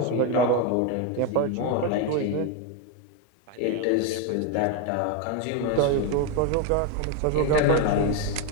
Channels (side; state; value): both; different; correlation 0.02